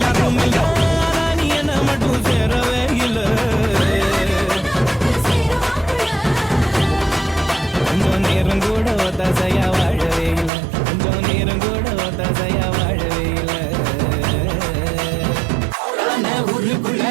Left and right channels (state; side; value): drops out; left; at 10.5 s